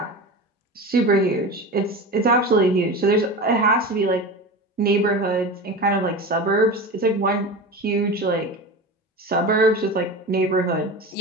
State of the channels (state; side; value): normal; both; correlation 0.28